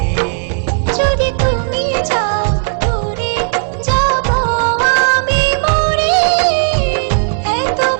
যদি তুমি যাও দূরে যাব আমি মরে, এত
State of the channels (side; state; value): left; silent; digital silence